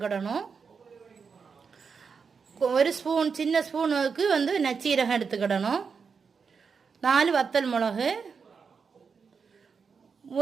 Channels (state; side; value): quieter; left; 5.7 dB